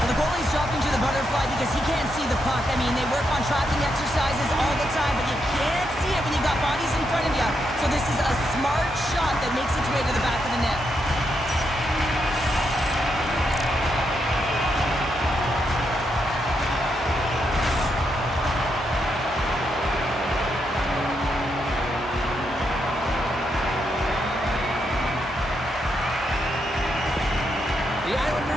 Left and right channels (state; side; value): normal; both; correlation 0.81